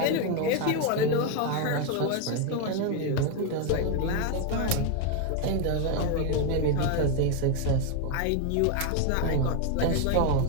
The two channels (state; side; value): different; both; correlation 0.01